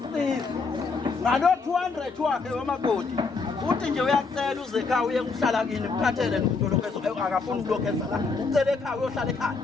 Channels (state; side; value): quieter; right; 4.4 dB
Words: ngalo 200 wakhe wamakoti uthi nje uyacela uze ekhaya uye kuhlala kini ukuphathele nomuntu lokho akafuni ukulokheza la ucela ekhaya uyohlala ekhaya